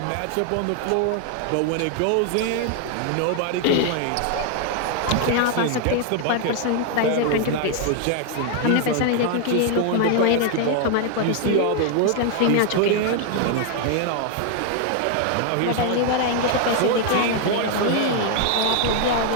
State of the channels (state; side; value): different; both; correlation 0.00